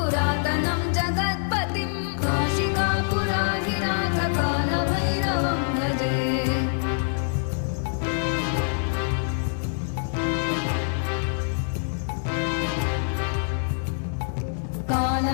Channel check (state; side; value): silent; right; digital silence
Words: जगत्पतिं काशिकापुराधिनाथ कालभैरवं भजे।